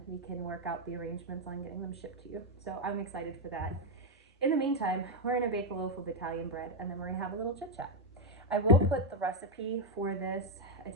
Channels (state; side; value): normal; both; correlation 0.05